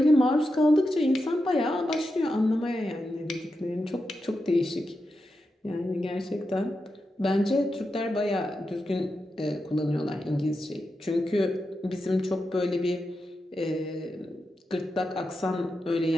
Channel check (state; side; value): normal; both; correlation 0.88